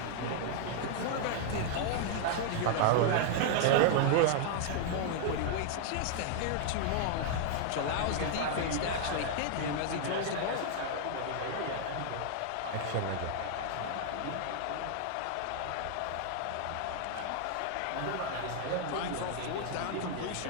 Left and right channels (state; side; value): different; both; correlation 0.00